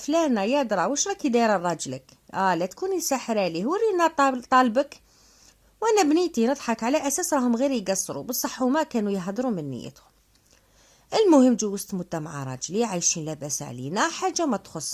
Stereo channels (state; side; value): identical; both; correlation 1.00